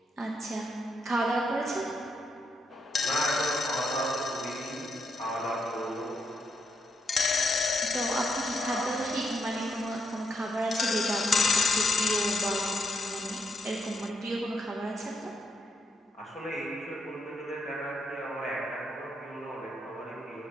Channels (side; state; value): both; normal; correlation 0.79